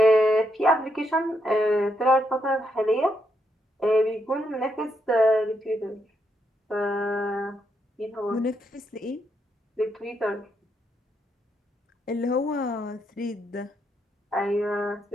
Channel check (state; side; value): normal; both; correlation 0.78